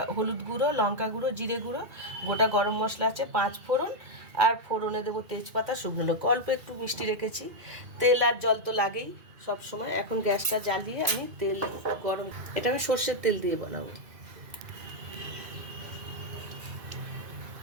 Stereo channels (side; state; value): left; late; 2.4 ms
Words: হলুদ গুঁড়ো, লঙ্কা গুঁড়ো, জিরে গুঁড়ো, গোটা গরম মশলা আছে, 5 ফোড়ন, আর ফোড়নে দেবো তেজপাতা, শুকনো লঙ্কা, অল্প একটু মিষ্টি রেখেছি। তেল আর জল তো লাগেই সব সময়। এখন গ্যাসটা জ্বালিয়ে আমি তেল গরম, এটা আমি সর্ষের তেল দিয়ে বানাবো।